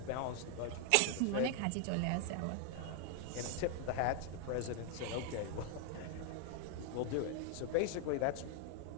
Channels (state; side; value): different; both; correlation 0.00